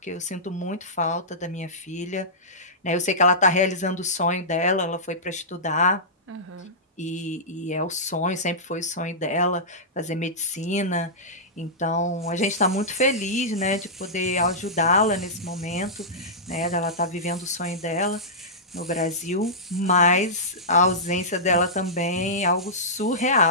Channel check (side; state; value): both; normal; correlation -0.15